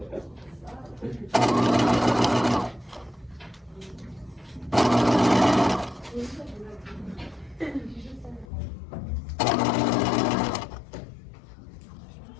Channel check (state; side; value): drops out; right; at 8.5 s